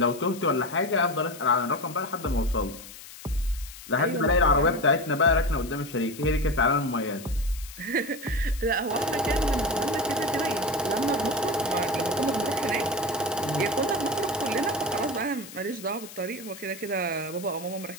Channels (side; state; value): left; noise; hiss, 15 dB below the sound